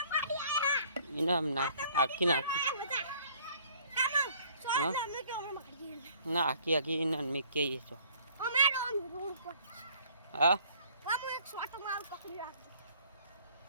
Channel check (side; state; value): both; inverted; correlation -0.57